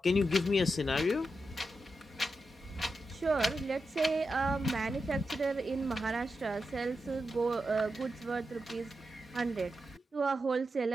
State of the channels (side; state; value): both; normal; correlation 0.88